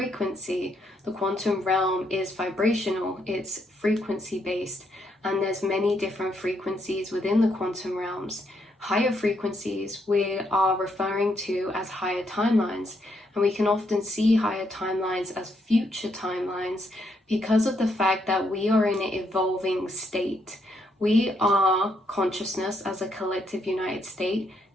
The quantum realm is vibrational, it's frequency based, and there's many different frequencies within the quantum realms. Higher frequencies we are referring to as higher timelines, and we can often see higher timelines as future timelines because of the fact that we are in an evolving state. We are consciousness as a collective united state,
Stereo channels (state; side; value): normal; both; correlation 0.76